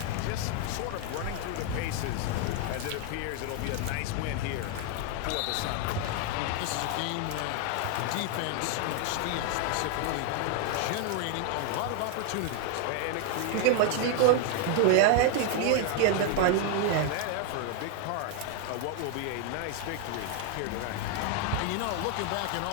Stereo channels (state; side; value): different; both; correlation 0.00